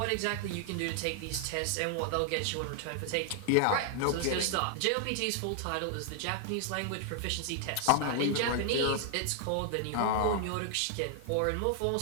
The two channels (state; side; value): different; both; correlation 0.00